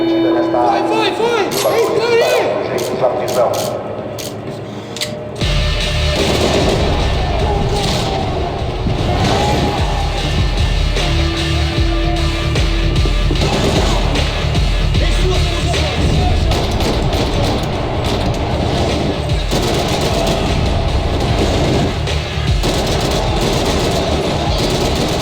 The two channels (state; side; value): identical; both; correlation 1.00